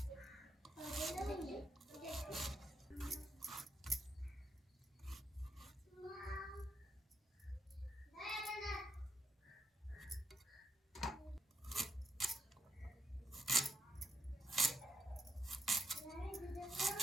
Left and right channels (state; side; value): normal; both; correlation 0.79